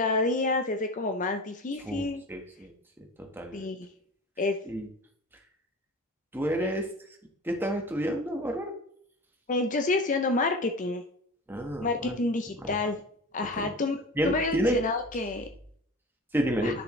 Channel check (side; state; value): both; normal; correlation 0.35